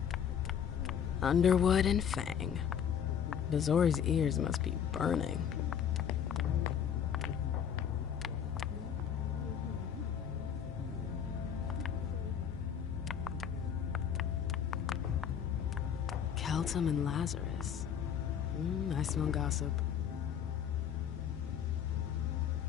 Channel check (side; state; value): right; quieter; 8.3 dB